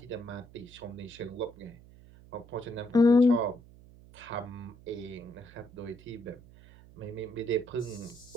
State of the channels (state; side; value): noise; right; hum, 22 dB below the sound